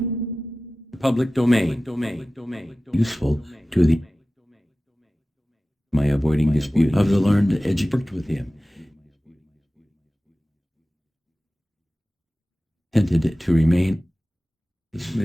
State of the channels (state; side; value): normal; both; correlation 0.96